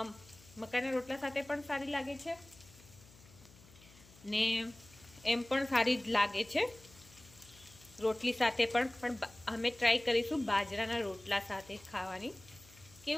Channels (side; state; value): left; noise; hum, 23 dB below the sound